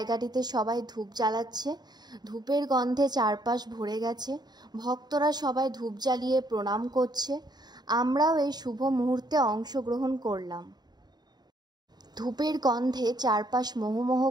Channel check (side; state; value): left; late; 0.20 ms